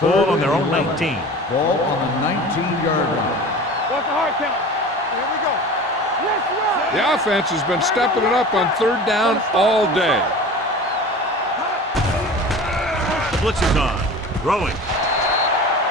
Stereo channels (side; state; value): both; normal; correlation 0.37